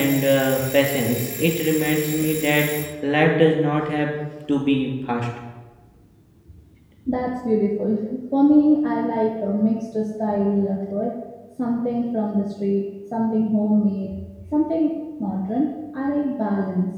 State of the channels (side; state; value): both; identical; correlation 1.00